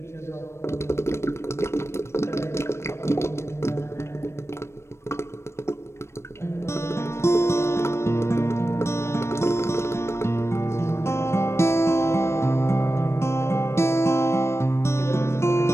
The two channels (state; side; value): late; right; 0.13 ms